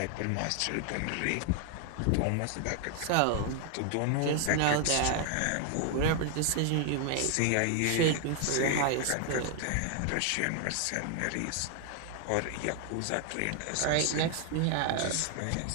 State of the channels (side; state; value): both; different; correlation 0.00